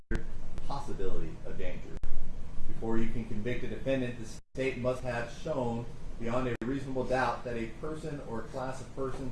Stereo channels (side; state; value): both; identical; correlation 1.00